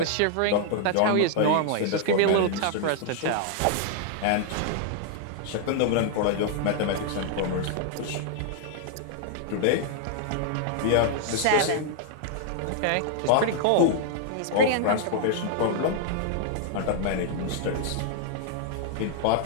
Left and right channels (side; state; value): both; different; correlation 0.00